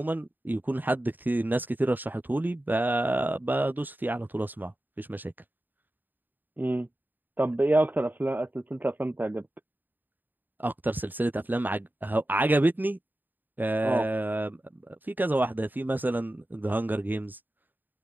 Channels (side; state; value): left; late; 0.089 ms